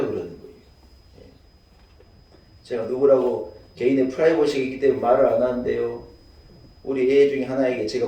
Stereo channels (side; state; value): both; identical; correlation 1.00